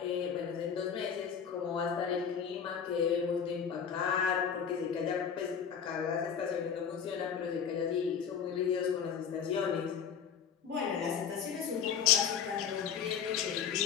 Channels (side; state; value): right; quieter; 7.4 dB